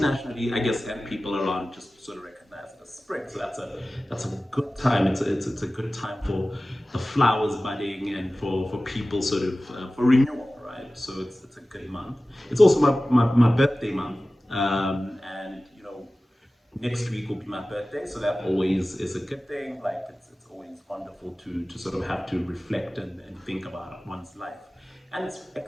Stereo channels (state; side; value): normal; both; correlation 0.96